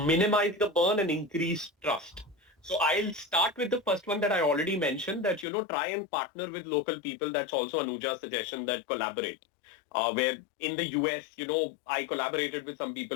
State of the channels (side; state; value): right; drops out; at 5.5 s